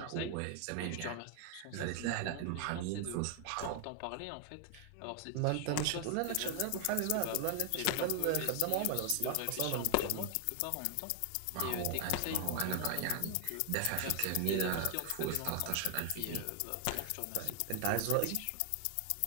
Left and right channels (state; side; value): different; both; correlation 0.00